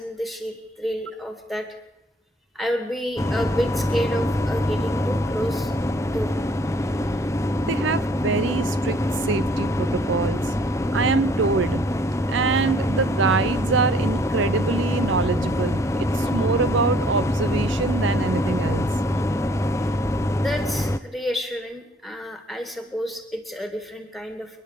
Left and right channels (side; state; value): both; normal; correlation 0.60